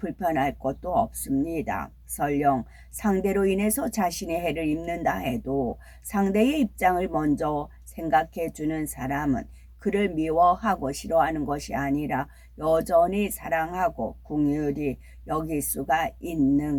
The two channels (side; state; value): both; identical; correlation 1.00